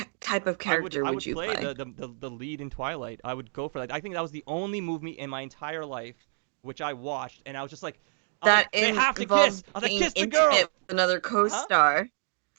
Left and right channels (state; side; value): silent; left; 57 dB below the other